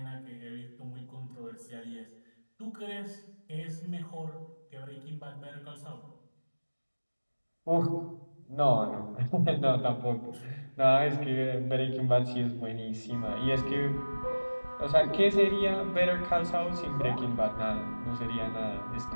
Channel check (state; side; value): inverted; both; correlation -1.00